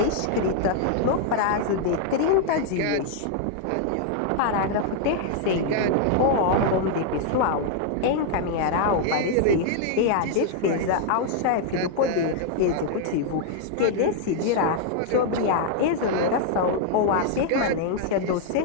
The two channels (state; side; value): different; both; correlation 0.00